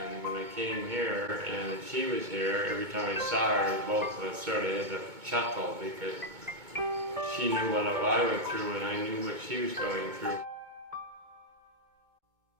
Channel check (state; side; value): late; left; 2.2 ms